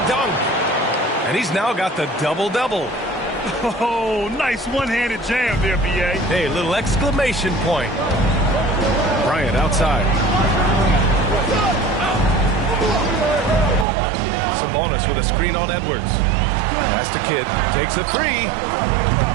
dunk. And he's now got the double-double. Oh, nice one-handed jam there, B.A. Hey, little exclamation point. Bryant outside. Sabonis with a screen on Edwards. Pass to Kidd. Takes a 3.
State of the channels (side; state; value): left; drops out; at 13.9 s